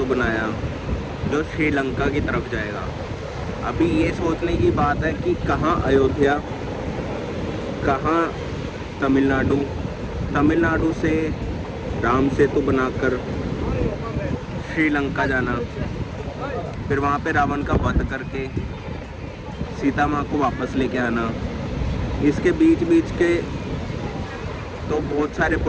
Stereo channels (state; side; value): identical; both; correlation 1.00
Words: बनाया जो श्रीलंका की तरफ जाएगा। अभी ये सोचने की बात है कि कहाँ अयोध्या, कहाँ तमिलनाडु। तमिलनाडु से राम सेतु बनाकर श्रीलंका जाना, फिर वहाँ पे रावण का वध करके सीता माँ को वापस लेके आना। इसके बीच बीच के तो बहुत सारे